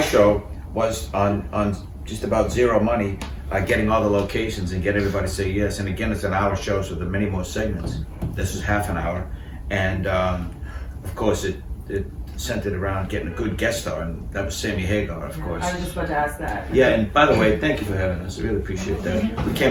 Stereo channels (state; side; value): identical; both; correlation 1.00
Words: show was on just about zero money, getting all the locations and get everybody to say yes. And again, it's an hour show, so there are many more segments. This is half an hour. And of course, it centered around getting a good guest star, and that was Sammy Hagar, of course. I was just about to ask that. Yeah, and by the way, thank you for having us. I really appreciate that. We